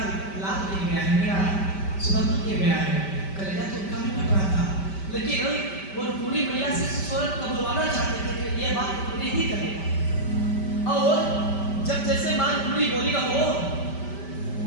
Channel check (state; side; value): late; right; 5.1 ms